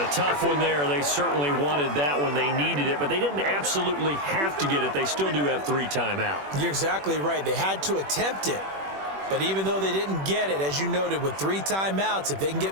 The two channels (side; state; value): left; late; 21 ms